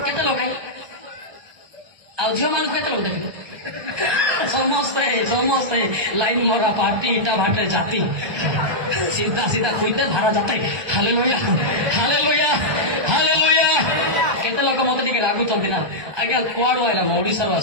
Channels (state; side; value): late; left; 1.2 ms